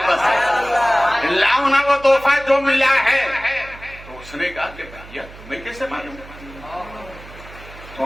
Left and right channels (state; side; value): noise; right; hum, 18 dB below the sound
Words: سے, لاؤنا وہ تحفہ جو ملا ہے. تو اس نے کہا کہ بھیا تمہیں کیسے معلوم؟ تو